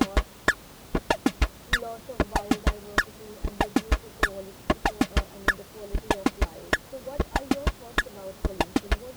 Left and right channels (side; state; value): both; identical; correlation 1.00